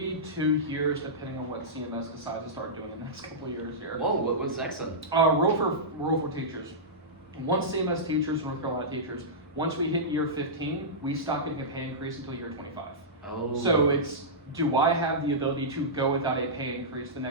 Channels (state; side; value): normal; both; correlation -0.14